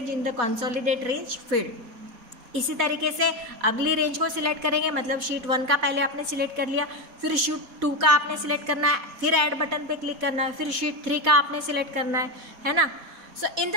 in the consolidate range field. इसी तरीके से अगली रेंज को सिलेक्ट करेंगे, मतलब शीट 1 का पहले आपने सिलेक्ट कर लिया, फिर शीट 2 का आपने सिलेक्ट करना है, फिर ऐड बटन पे क्लिक करना है, फिर शीट 3 का आपने सिलेक्ट करना है ना। So in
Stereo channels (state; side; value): late; left; 4.2 ms